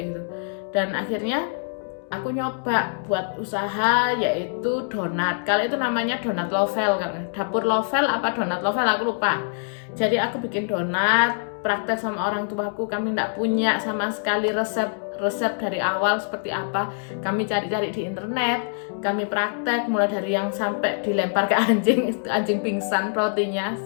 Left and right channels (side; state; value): right; silent; digital silence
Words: gitu. Dan akhirnya aku nyoba buat usaha, yaitu donat. Kalau itu namanya donat lovel kan, dapur lovel apa donat lovel aku lupa. Jadi aku bikin donat, praktek sama orang tuaku. Kami nggak punya sama sekali resep dari awal seperti apa. Kami cari-cari di internet, kami praktek mulai dari yang sampai dilempar ke anjing pingsan rotinya,